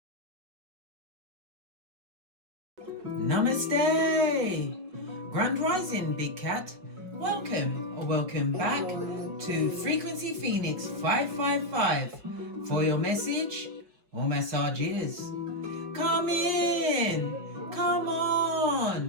Namaste! Grand Rising, Big Cat. Welcome or welcome back to Frequency Phoenix 555 for your message or messages. Come in! Come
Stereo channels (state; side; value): late; left; 5.1 ms